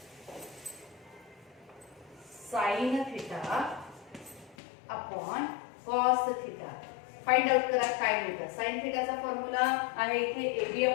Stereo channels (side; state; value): right; drops out; at 4.5 s